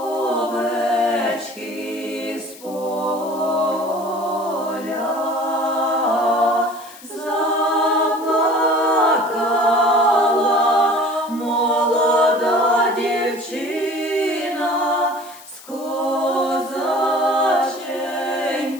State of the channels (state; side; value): noise; left; hiss, 20 dB below the sound